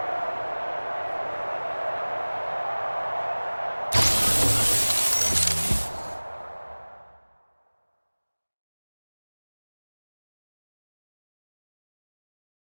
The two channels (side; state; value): both; inverted; correlation -1.00